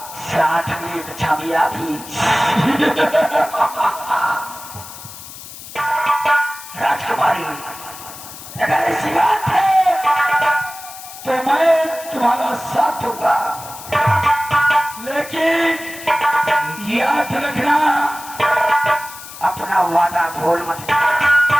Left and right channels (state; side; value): noise; left; hiss, 14 dB below the sound